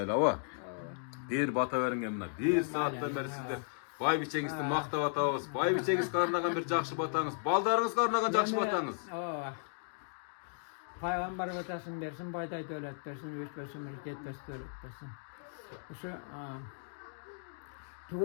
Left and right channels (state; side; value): silent; right; digital silence